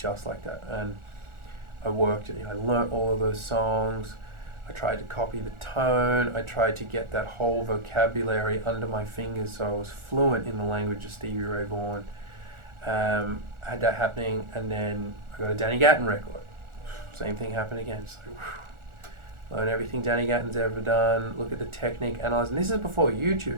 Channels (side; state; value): left; late; 1.4 ms